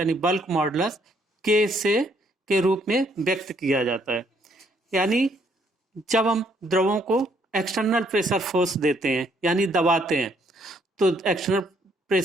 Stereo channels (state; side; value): normal; both; correlation 0.69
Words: बल्क मॉडुलस के रूप में व्यक्त किया जाता है। यानी जब हम द्रवों को एक्सटर्नल प्रेशर फोर्स देते हैं यानी दबाते हैं, तो एक्सटर्नल